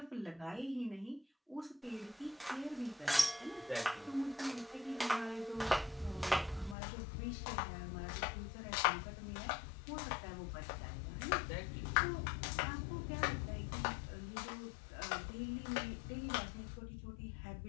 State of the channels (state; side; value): drops out; right; at 6.8 s